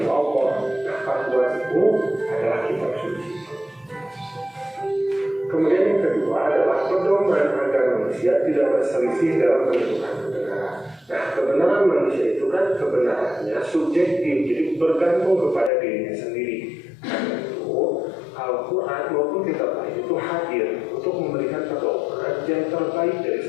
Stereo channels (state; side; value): drops out; right; at 15.7 s